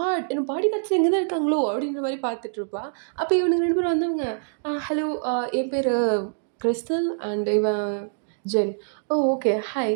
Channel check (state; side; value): silent; left; digital silence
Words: என்னோட பாடி கார்ட்ஸும் இங்க தான் இருக்காங்களோ! அப்படின்ற மாரி பார்த்துட்டுருப்பா. அப்ப இவனுங்க 2 பேரும் வந்தவங்க, ஹலோ என் பேரு கிறிஸ்டல் அண்ட் இவன் ஜென். ஓ! ஓகே.